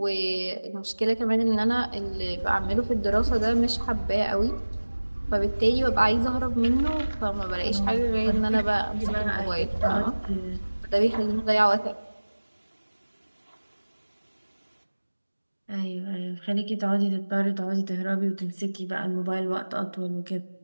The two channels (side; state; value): both; inverted; correlation -1.00